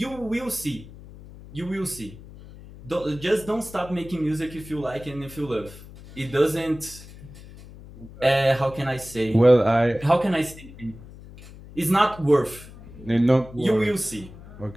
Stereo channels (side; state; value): left; noise; hum, 18 dB below the sound